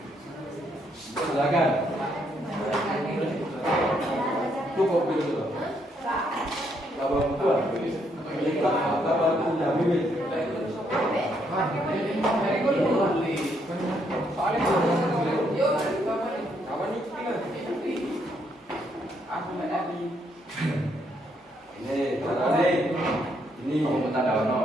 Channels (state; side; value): normal; both; correlation 0.73